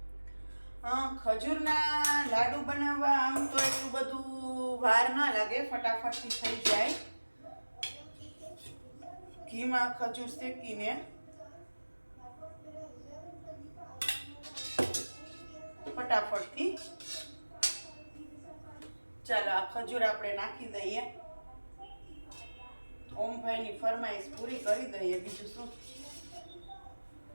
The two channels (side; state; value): both; inverted; correlation -1.00